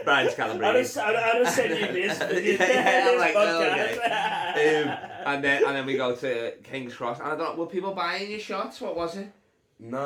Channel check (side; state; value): both; identical; correlation 1.00